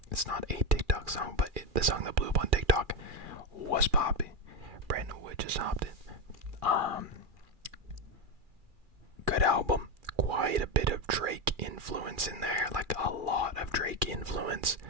it's not a TikTok song, but the song that blew up on TikTok was popping. Brandon Wood just hopped in. Good album, quite a bit of Drake influence in there, like a lot of Drake influence.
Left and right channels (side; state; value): left; late; 2.4 ms